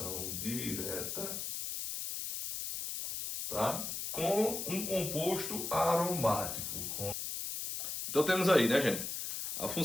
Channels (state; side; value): noise; left; hiss, 4 dB below the sound